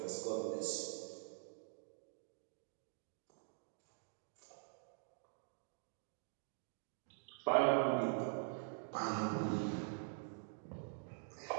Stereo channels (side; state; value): left; silent; digital silence